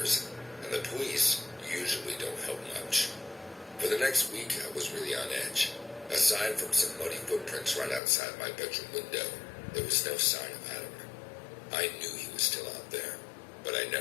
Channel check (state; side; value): drops out; right; at 8.0 s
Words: and the police usually don't help much. For the next week, I was really on edge. Aside from some muddy footprints right outside my bedroom window, there was no sign of Adam. I knew he was still out there, but I